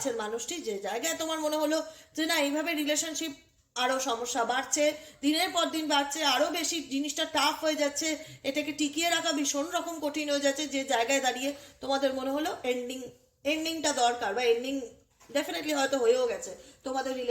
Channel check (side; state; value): both; identical; correlation 1.00